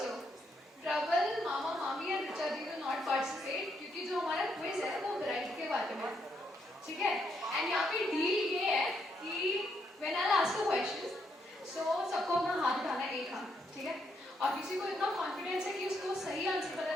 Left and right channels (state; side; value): normal; both; correlation 0.76